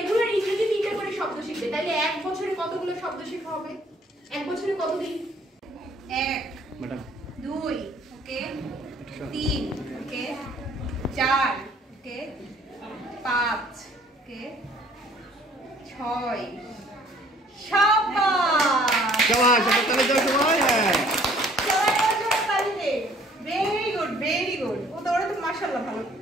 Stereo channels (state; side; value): normal; both; correlation 0.58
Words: ইংরেজি 3টা করে শব্দ শিখবে। তাহলে 1 বছরে কতগুলো শব্দ শেখা হবে? 1 বছরে কতদিন? 1 2 ওকে, 3 ওকে, 4 ওকে, 5 ওকে, 6 শাবাশ শাবাশ তাহলে যাও সময়। হ্যাঁ ভেরি গুড ভেরি গুড। ও তো ওরা তো মাশাআল্লাহ ভালো